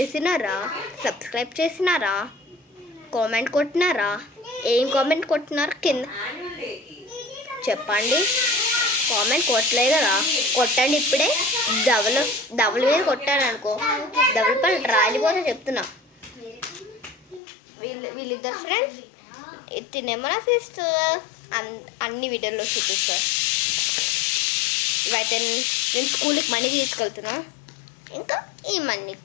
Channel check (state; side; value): drops out; right; at 17.4 s